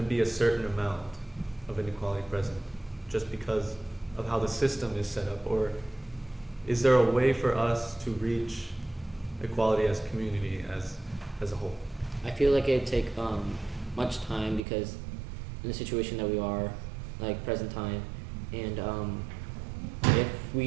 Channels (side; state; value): left; drops out; at 14.7 s